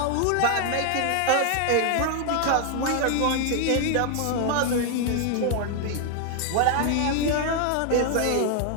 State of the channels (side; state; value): both; different; correlation 0.00